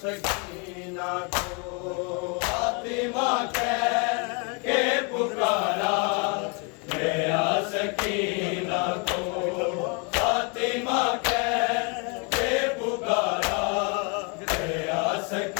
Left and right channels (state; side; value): quieter; right; 34.7 dB